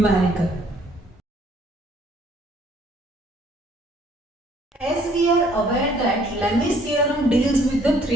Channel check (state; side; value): normal; both; correlation 0.62